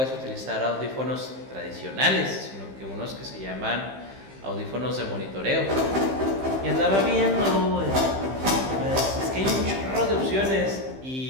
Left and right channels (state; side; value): late; left; 15 ms